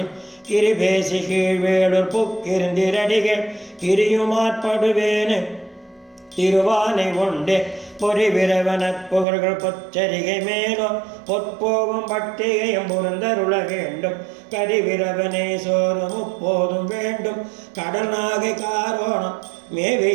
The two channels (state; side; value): drops out; left; at 9.2 s